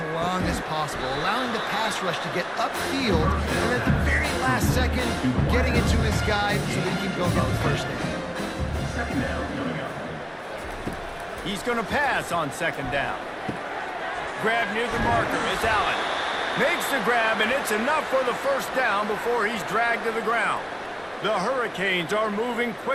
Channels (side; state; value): both; identical; correlation 1.00